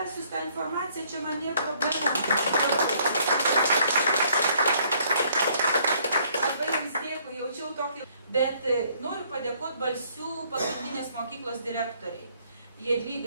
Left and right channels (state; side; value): inverted; both; correlation -0.64